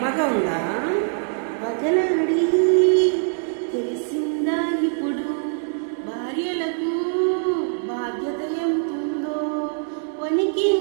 ఉందా? వగలాడి తెలిసిందా ఇప్పుడు భార్యలకు బాధ్యత ఎంతుందో?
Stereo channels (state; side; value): silent; left; 60 dB below the other